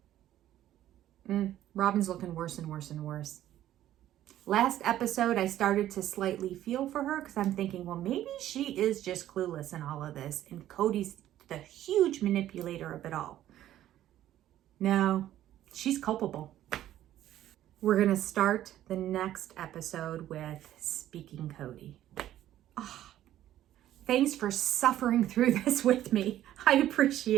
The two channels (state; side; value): quieter; left; 12.7 dB